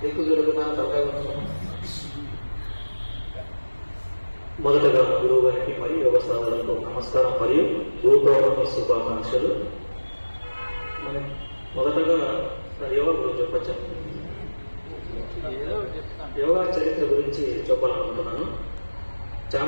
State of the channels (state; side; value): inverted; both; correlation -1.00